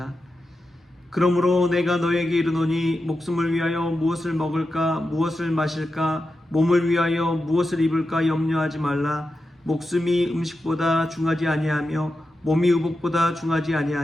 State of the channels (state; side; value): normal; both; correlation 0.90